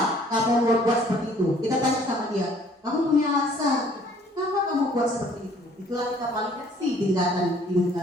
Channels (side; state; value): both; normal; correlation 0.58